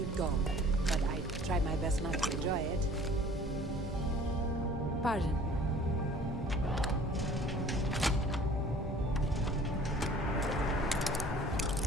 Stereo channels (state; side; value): normal; both; correlation 0.49